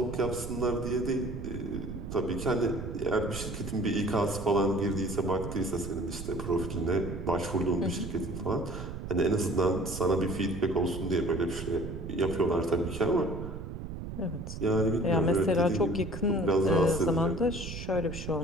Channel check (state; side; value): noise; right; rumble, 8 dB below the sound